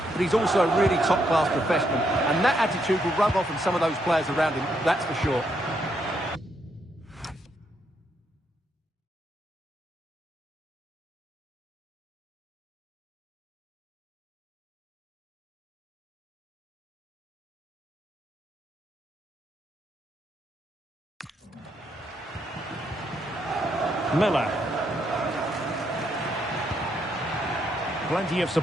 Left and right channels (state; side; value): normal; both; correlation 0.76